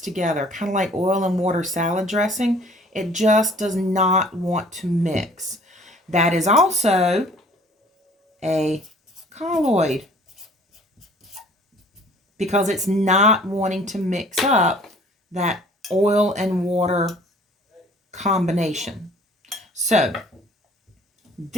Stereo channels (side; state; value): both; normal; correlation 0.53